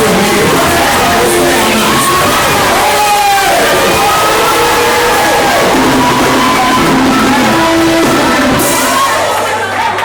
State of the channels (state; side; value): identical; both; correlation 1.00